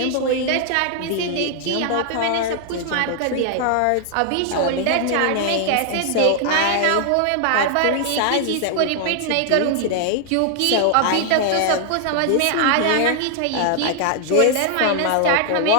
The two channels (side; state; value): both; different; correlation 0.00